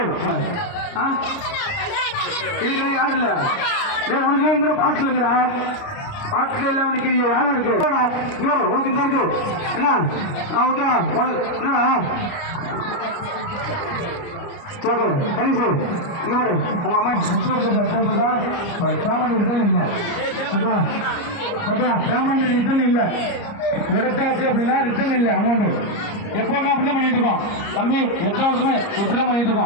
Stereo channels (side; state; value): right; late; 29 ms